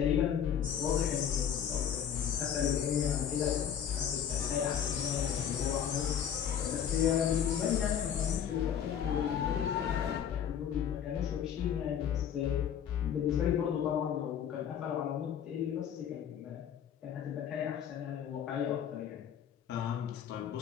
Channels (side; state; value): right; quieter; 8.8 dB